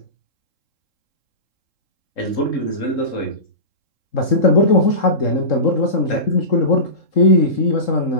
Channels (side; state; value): right; late; 3.7 ms